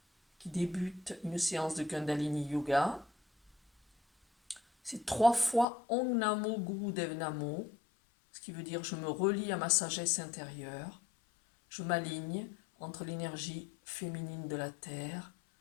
qui débute une séance de Kundalini Yoga. C'est 3 fois Om Namo Gurudev Namo, ce qui veut dire je me relie à ma sagesse intérieure. Je m'aligne entre l'énergie féminine de la terre,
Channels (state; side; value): drops out; right; at 5.7 s